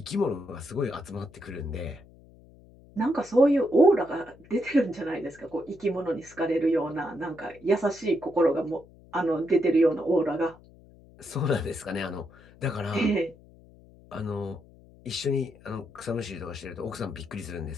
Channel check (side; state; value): left; noise; hum, 24 dB below the sound